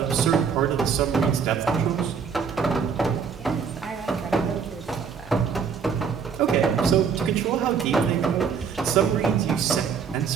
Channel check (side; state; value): left; quieter; 6.4 dB